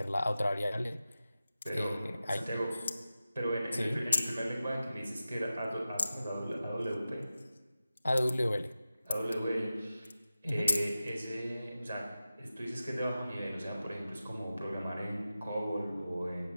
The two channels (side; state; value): both; inverted; correlation -0.94